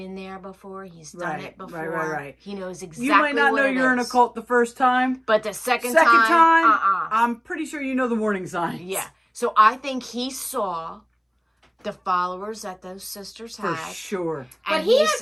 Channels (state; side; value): identical; both; correlation 1.00